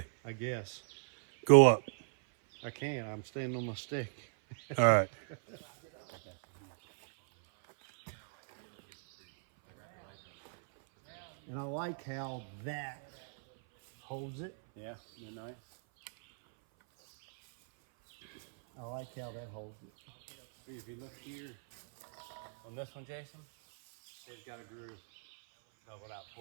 I guess. go up. I can't. I'm standing on my stick. All right. And I like how that holds it. Yeah, they're nice. I like how that holds it. See, if you look here on this one, Jason, it's got a groove leveled out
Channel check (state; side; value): silent; left; 54 dB below the other